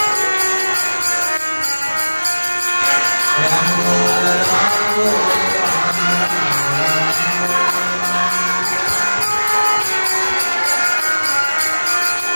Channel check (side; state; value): both; inverted; correlation -1.00